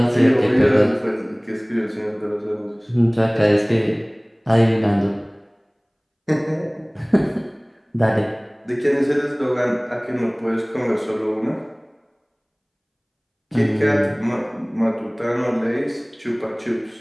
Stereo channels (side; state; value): both; identical; correlation 1.00